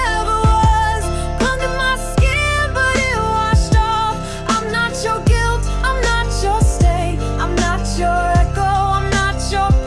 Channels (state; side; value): identical; both; correlation 1.00